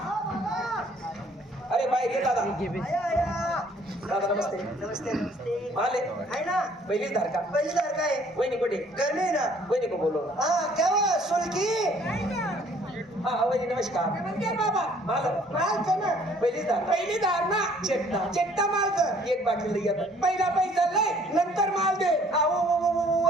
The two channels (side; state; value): both; normal; correlation 0.59